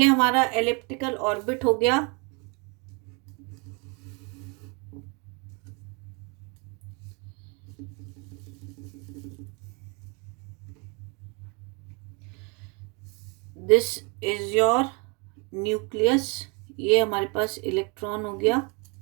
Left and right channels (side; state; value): left; quieter; 32.2 dB